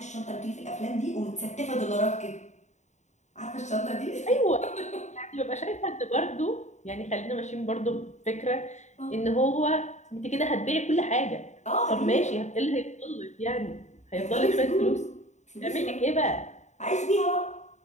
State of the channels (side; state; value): right; late; 0.34 ms